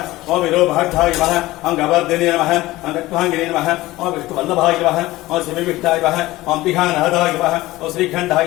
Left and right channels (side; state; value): right; quieter; 18.1 dB